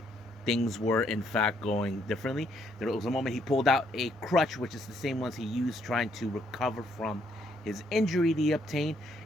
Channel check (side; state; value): both; normal; correlation 0.71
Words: things were in fact going differently. There was a moment he pulled out a crutch, which is the same ones he used trying to recover from his injury that he obtained,